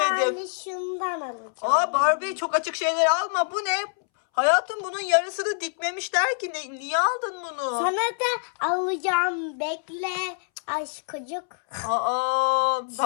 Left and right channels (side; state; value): right; silent; 61 dB below the other